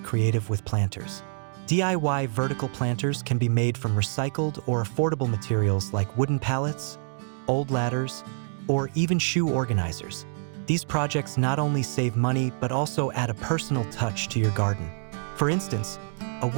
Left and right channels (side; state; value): left; silent; digital silence